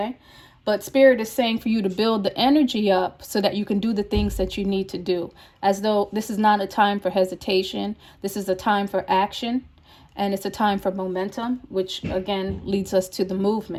But Spirit is saying for you to build the energy up so that you can do the things that you need to do, as though this is not a time for hesitation. This is a time for action, and it's a time for momentum, which again leads us to the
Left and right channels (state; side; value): identical; both; correlation 1.00